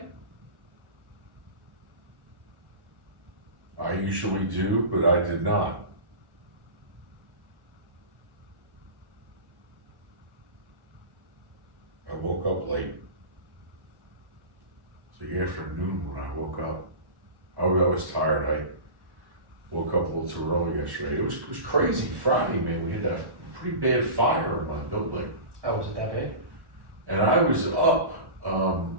I usually do, but I did not. I woke up late. It's the afternoon when I woke up. I was tired. I woke up a little too early yesterday. It was crazy Friday, man. We had that pretty bad fire in my building. Oh, was it that bad? And I was up,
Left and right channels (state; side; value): late; left; 1.1 ms